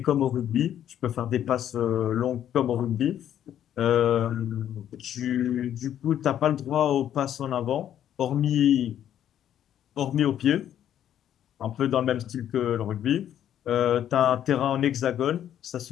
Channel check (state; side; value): quieter; right; 10.6 dB